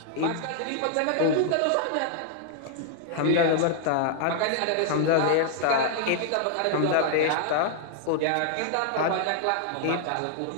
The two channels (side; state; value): both; different; correlation 0.00